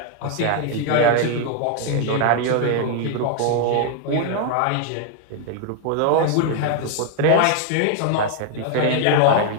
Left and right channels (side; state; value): both; different; correlation 0.00